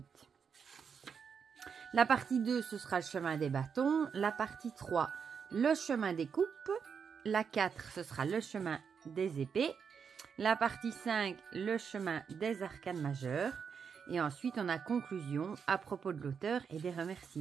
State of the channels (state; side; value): quieter; left; 6.6 dB